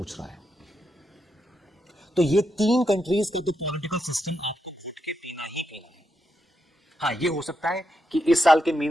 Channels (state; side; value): normal; both; correlation 0.83